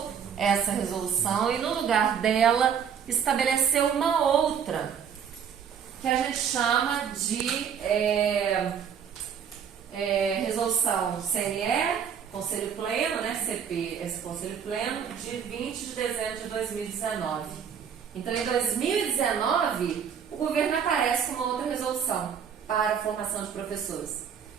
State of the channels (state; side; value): quieter; left; 7.7 dB